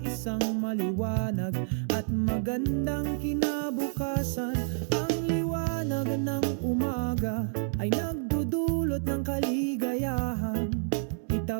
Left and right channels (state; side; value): silent; left; digital silence